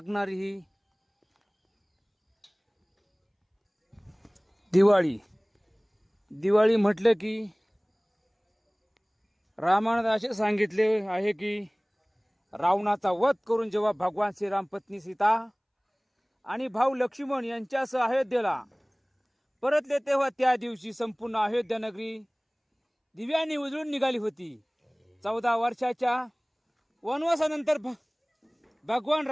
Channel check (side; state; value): both; identical; correlation 1.00